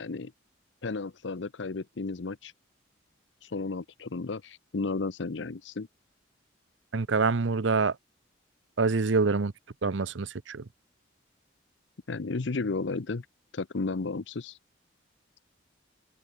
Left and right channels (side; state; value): both; normal; correlation 0.07